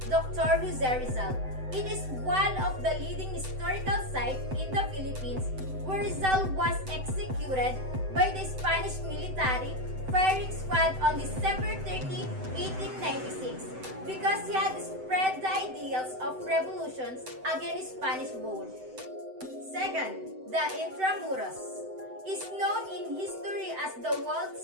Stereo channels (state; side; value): late; left; 7.9 ms